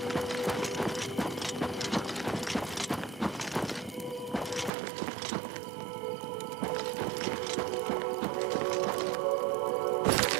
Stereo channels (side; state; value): left; drops out; at 4.7 s